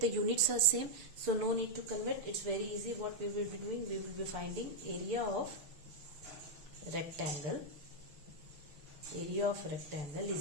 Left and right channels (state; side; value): late; left; 6.9 ms